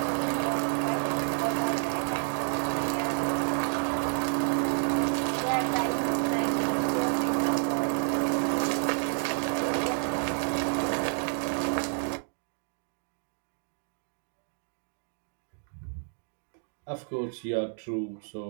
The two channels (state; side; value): silent; left; 58 dB below the other